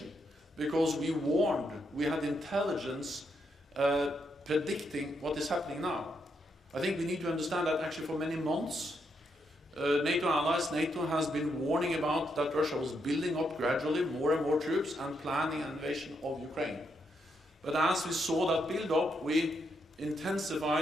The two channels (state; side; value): normal; both; correlation 0.79